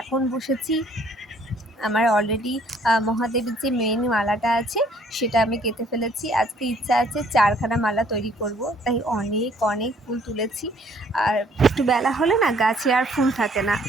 এখন বসেছি আমার অলরেডি মহাদেবের যে মেন মালাটা আছে সেটা আমি কেটে ফেলেছি। আজকে ইচ্ছা আছে 4খানা মালা তৈরি করব, তাই অনেক অনেক ফুল তুলেছি। আর একটু বেলা হলে না গাছে আর ফুল থাকে না,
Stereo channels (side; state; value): both; normal; correlation 0.61